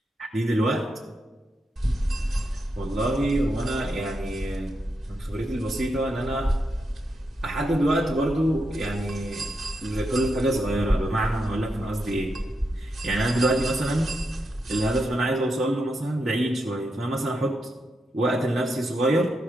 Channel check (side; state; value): both; normal; correlation 0.84